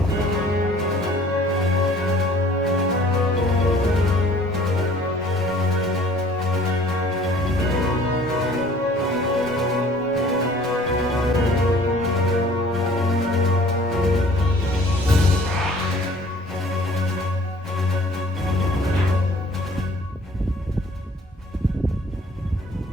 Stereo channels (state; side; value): normal; both; correlation 0.53